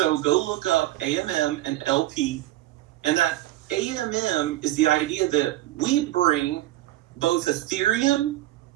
go look up AMM and LP, and that AMM is the idea that we bring both Ethereum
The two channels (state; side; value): quieter; left; 15.6 dB